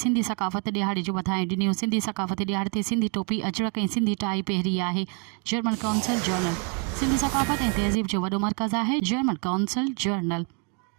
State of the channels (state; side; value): quieter; left; 37.6 dB